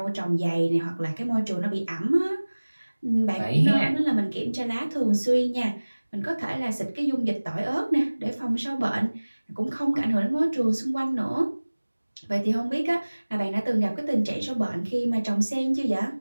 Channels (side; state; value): both; inverted; correlation -1.00